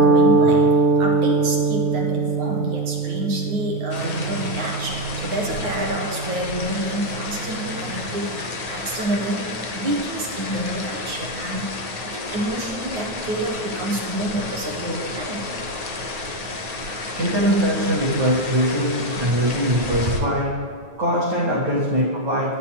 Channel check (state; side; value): late; left; 9.3 ms